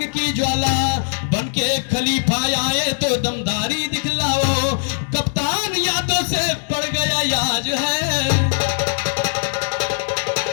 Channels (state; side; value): silent; right; digital silence